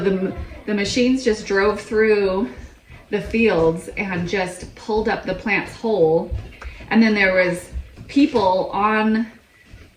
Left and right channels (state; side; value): identical; both; correlation 1.00